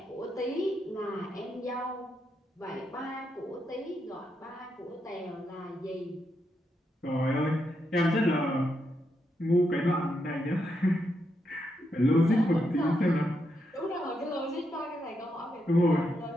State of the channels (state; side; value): normal; both; correlation 0.81